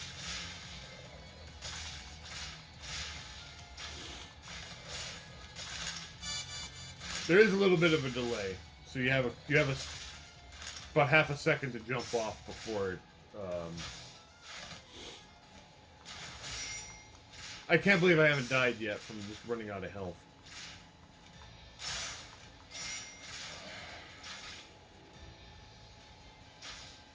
There is a little bit of a delay, so you have about half a second to jump off before it. I can't believe I haven't died yet from just running out of health.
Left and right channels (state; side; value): identical; both; correlation 1.00